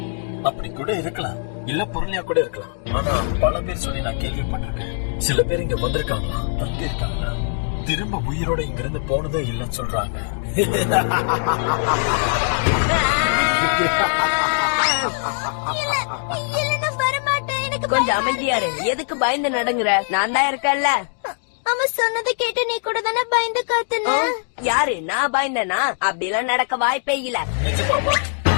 அப்படி கூட இருக்கலாம், இல்ல பொருளையா கூட இருக்கலாம். ஆனா பல பேர் சொல்லி நான் கேள்விப்பட்டிருக்கேன். சில பேர் இங்க வந்திருக்காங்க, இருக்காங்க, திரும்ப உயிரோட இங்க இருந்து போனதும் இல்லைன்னு சொல்றாங்க. கொஞ்சம் அமைதியா இரு. எதுக்கு பயந்து நடங்குற? நான் தான் இருக்கேன்ல. அவன் சொன்னதை கேட்டு நீ கூட தானே பயந்து காத்துன? யாரு? நான் பயந்தனா? அப்படிலாம் நடக்க வாய்ப்பே இல்ல.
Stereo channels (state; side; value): silent; right; digital silence